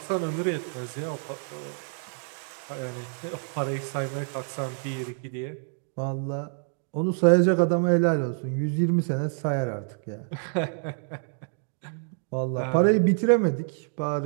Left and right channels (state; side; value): silent; left; 60 dB below the other